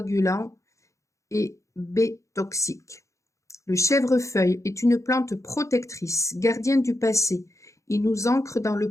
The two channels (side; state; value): right; late; 0.15 ms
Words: et B toxiques. Le chèvrefeuille est une plante protectrice, gardienne du passé. Il nous ancre dans le